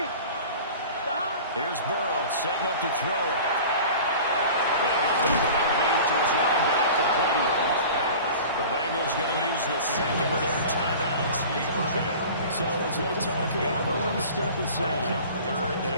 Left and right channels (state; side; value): inverted; both; correlation -0.40